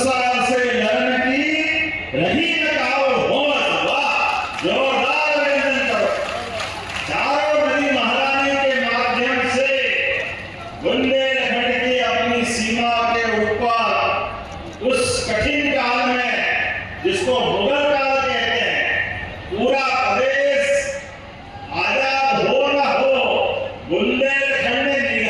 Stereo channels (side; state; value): both; identical; correlation 1.00